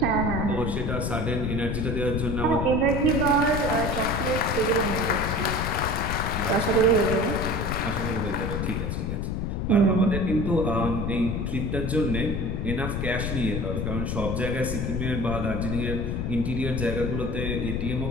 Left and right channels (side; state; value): left; noise; rumble, 1 dB below the sound